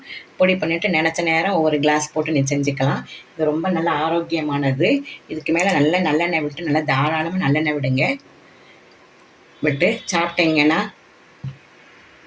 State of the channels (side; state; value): both; identical; correlation 1.00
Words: பொடி பண்ணிவிட்டு நினச்ச நேரம் ஒவ்வொரு கிளாஸ் போட்டு நீ செஞ்சுக்கலாம். இது ரொம்ப நல்ல ஆரோக்கியமானது. இதுக்கு மேலே நல்லெண்ணெய் விட்டு நல்லா தாராளமாக நல்லெண்ணெய் விட்டு சாப்பிட்டீங்கன்னா